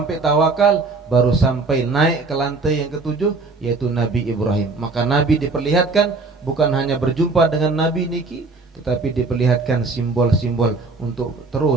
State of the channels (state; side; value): quieter; left; 3.8 dB